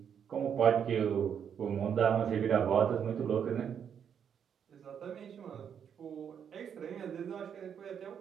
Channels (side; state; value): left; quieter; 8.0 dB